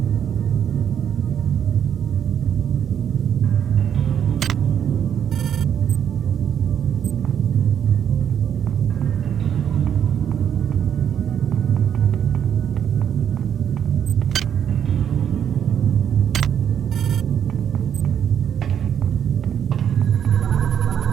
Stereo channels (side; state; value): left; quieter; 8.8 dB